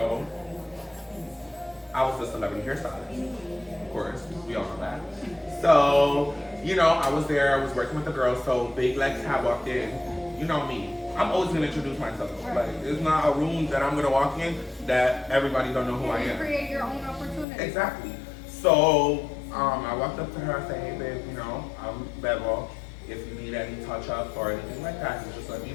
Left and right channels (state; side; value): drops out; right; at 17.4 s